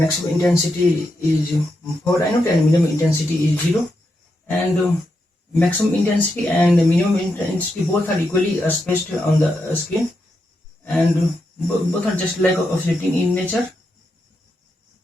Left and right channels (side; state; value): both; normal; correlation 0.84